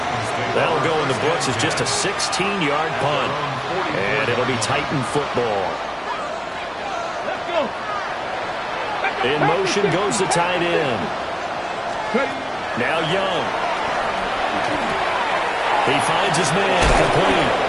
That'll go in the books as just a 16-yard punt. And it'll be Titan football. In motion goes the tight end. Now Young. He finds his man, complete.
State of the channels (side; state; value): both; identical; correlation 1.00